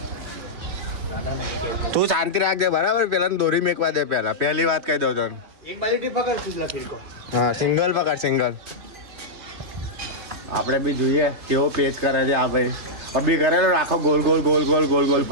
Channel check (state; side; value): late; left; 3.0 ms